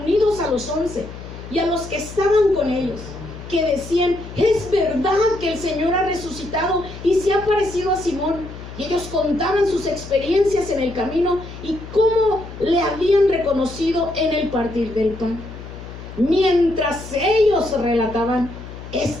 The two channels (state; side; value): noise; left; hum, 13 dB below the sound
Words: a los 11 y a los que estaban con ellos, que decían: es verdad que el Señor ha resucitado y se ha aparecido a Simón. Y ellos contaban sus experiencias en el camino y cómo le habían reconocido en el partir del pan. Mientras ellos relataban